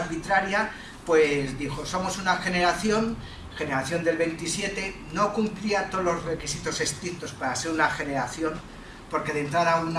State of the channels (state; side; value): identical; both; correlation 1.00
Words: pues dijo, somos una generación del 27, no cumplía todos los requisitos estrictos para ser una generación, porque de entrada